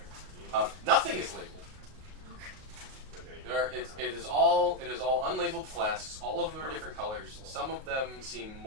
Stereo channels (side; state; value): left; late; 38 ms